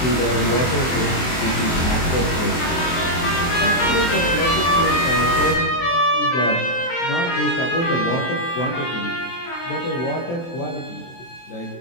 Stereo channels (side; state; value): right; late; 23 ms